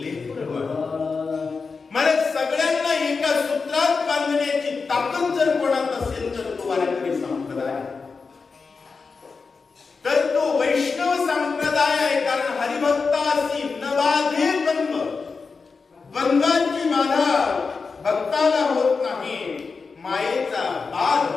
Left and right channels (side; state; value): right; quieter; 4.7 dB